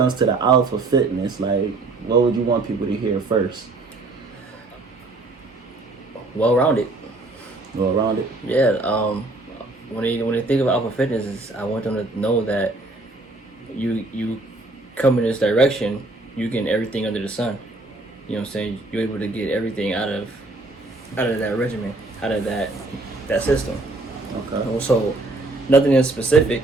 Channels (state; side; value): quieter; left; 3.0 dB